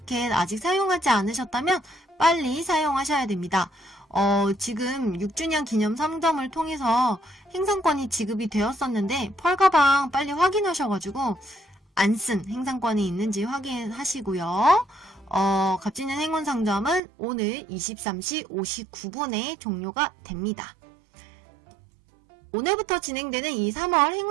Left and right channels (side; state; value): left; drops out; at 17.0 s